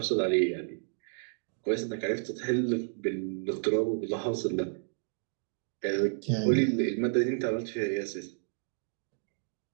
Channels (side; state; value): left; silent; digital silence